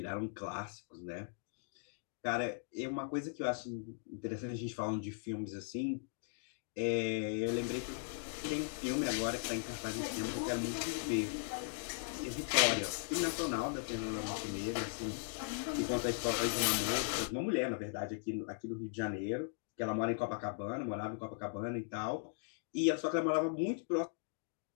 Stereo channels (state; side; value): silent; right; digital silence